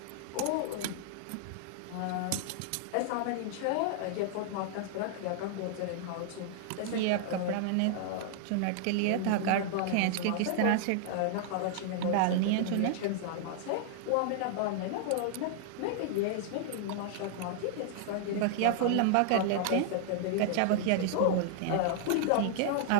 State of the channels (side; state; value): both; different; correlation -0.01